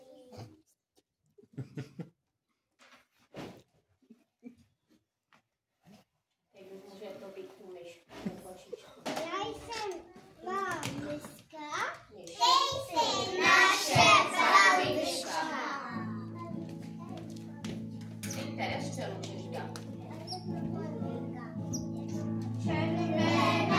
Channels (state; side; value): identical; both; correlation 1.00